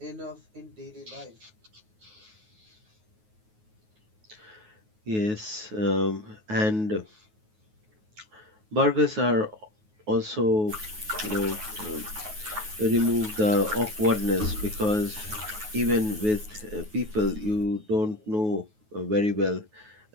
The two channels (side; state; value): left; late; 9.4 ms